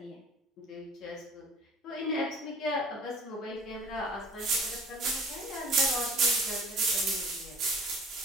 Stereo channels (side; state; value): both; normal; correlation 0.47